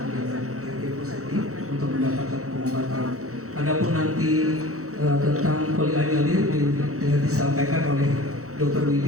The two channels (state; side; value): late; left; 0.65 ms